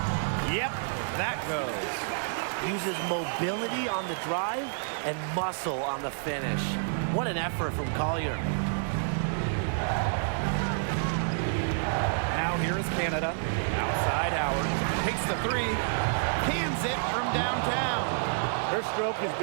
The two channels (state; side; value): silent; left; digital silence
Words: Yep, that goes. Uses mobility on the drive and muscle on the finish. What an effort from Collier. Now here is Canada. Outside Howard. Takes the 3. Cans it from downtown. Her stroke has